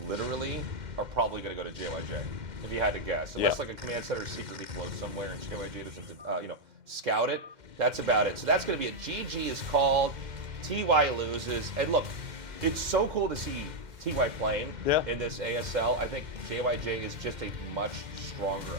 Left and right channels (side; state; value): left; late; 2.1 ms